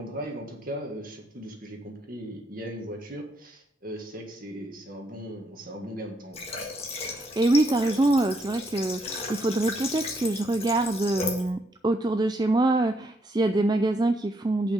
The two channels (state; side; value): normal; both; correlation 0.74